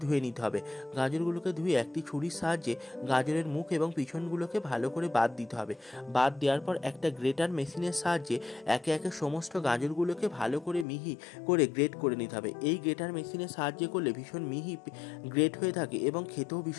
ধুয়ে নিতে হবে। গাজরগুলোকে ধুয়ে একটি ছুরির সাহায্যে গাজরের মুখ এবং পিছনগুলোকে ভালো করে বাদ দিতে হবে। বাদ দেওয়ার পর একটা গ্রেটার মেশিনের সাহায্যে একে একে সমস্ত গাজরগুলোকে ভালো করে মিহি করে গ্রেট করে নিতে হবে। এই গ্রেটার মেশিনের সাহায্যে করলে ভীষণ মিহি গ্রেট হয়ে থাকে এবং খেতেও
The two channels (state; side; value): drops out; right; at 10.9 s